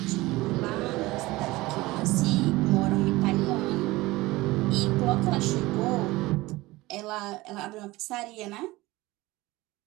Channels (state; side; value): quieter; left; 19.9 dB